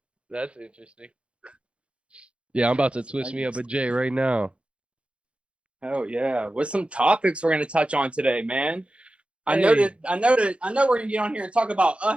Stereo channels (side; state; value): left; late; 0.059 ms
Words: That's interesting. Yeah, I'm about to twist me up a J right now. Oh yeah. What's some topics we're gonna touch on today, man? I know we're gonna get on here and talk about